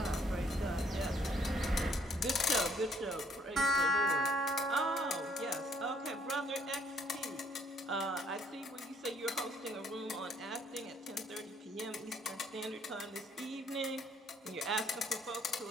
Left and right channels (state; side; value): normal; both; correlation 0.65